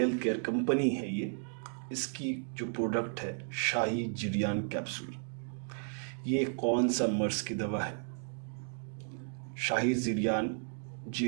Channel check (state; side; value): silent; left; 55 dB below the other